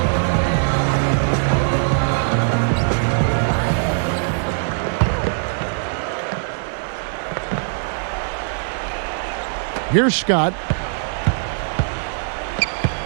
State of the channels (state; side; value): silent; left; digital silence